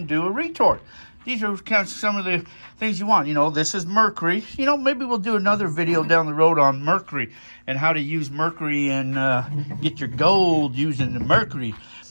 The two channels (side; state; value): both; inverted; correlation -1.00